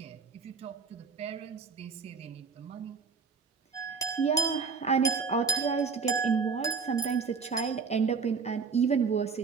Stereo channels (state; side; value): quieter; left; 5.3 dB